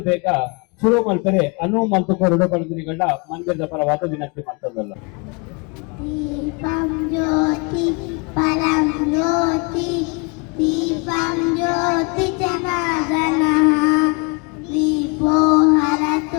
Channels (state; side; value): quieter; right; 30.7 dB